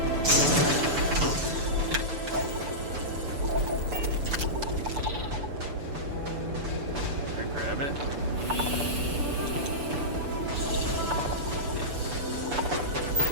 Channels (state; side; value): late; left; 6.9 ms